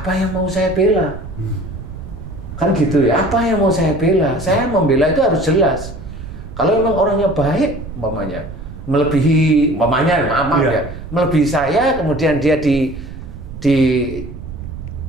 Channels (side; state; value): right; noise; rumble, 12 dB below the sound